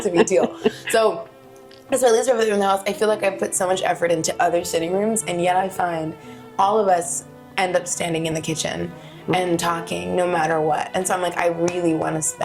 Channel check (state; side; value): identical; both; correlation 1.00